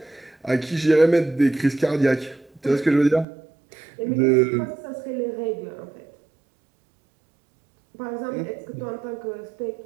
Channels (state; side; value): drops out; left; at 3.2 s